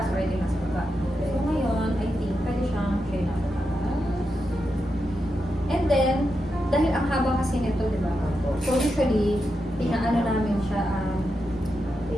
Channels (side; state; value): left; noise; rumble, 18 dB below the sound